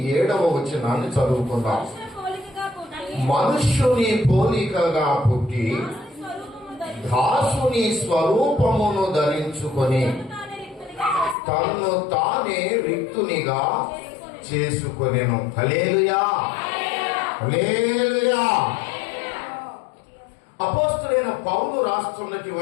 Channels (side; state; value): right; drops out; at 11.4 s